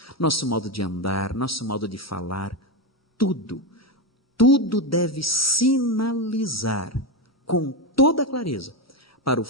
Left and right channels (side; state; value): both; normal; correlation 0.12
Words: nosso modo de andar, nosso modo de falar, tudo deve sinalizar com toda clareza para o